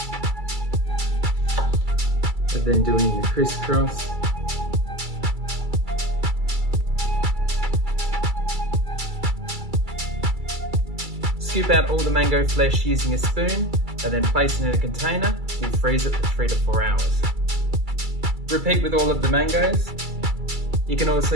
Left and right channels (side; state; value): left; late; 2.3 ms